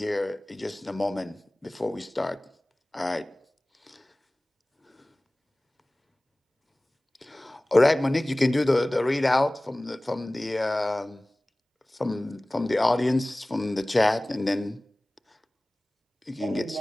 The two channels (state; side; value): normal; both; correlation 0.98